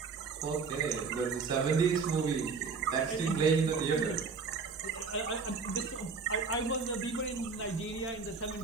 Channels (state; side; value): quieter; left; 4.9 dB